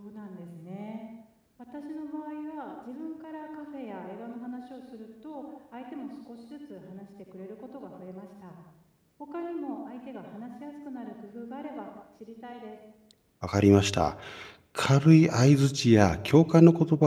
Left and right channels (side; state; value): both; identical; correlation 1.00